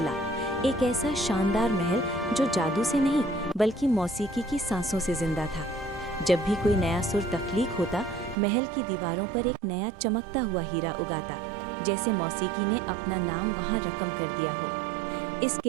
एक ऐसा शानदार महल जो जादू से नहीं बल्कि मौसीकी की सांसों से जिंदा था। जब भी कोई नया सुर तख्लीक होता, महल की दीवारों पर एक नया चमकता हुआ हीरा उगाता, जैसे मौसीकी ने अपना नाम वहाँ रकम कर दिया हो। इस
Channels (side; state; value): left; drops out; at 8.3 s